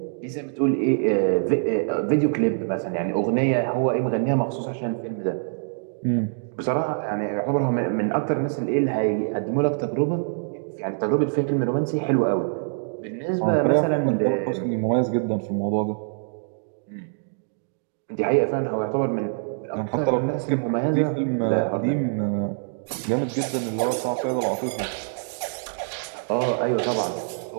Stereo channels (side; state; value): left; silent; digital silence